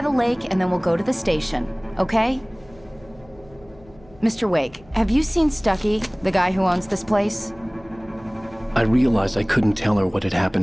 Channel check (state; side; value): noise; left; hum, 26 dB below the sound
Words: the lake and then we'll go to the station, okay? Mr. Wake, have you seen Stucky, the guy who owns this place? I realized I couldn't tell her what had